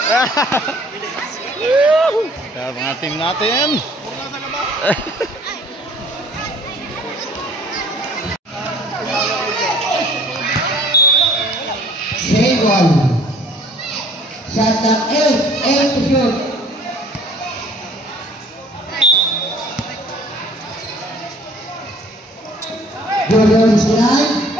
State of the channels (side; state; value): both; normal; correlation 0.54